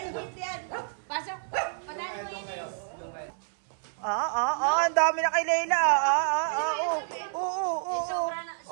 Pasok. Panalo mo yun eh. Ang dami na kay Layla.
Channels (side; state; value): left; silent; 59 dB below the other